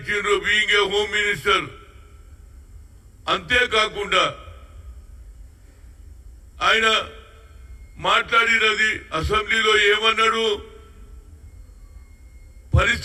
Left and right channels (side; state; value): both; identical; correlation 1.00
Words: బీయింగ్ ఏ హోమ్ మినిస్టర్. అంతేకాకుండా ఆయన మాట్లాడినది అసెంబ్లీలో ఏమన్నాడు?